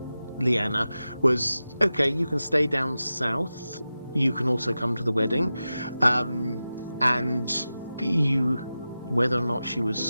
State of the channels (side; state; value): both; inverted; correlation -0.94